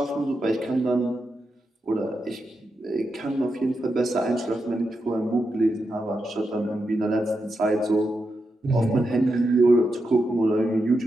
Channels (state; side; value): normal; both; correlation 0.86